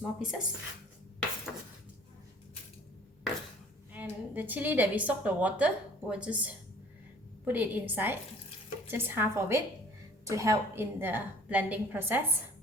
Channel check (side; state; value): both; normal; correlation 0.52